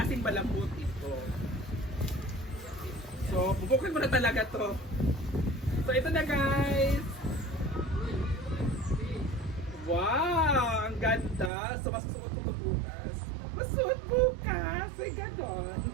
malambot ito. So bubukin ko na talaga to. So ito na guys. Wow! Ang ganda! So, masusuot ko bukas. Masuot bukas! Ay,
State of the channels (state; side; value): drops out; left; at 11.5 s